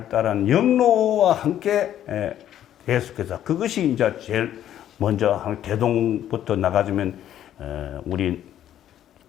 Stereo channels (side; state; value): right; quieter; 11.2 dB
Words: 영로와 함께 계속해서 그것이 이제 제일 먼저 대동부터 나가주면 우리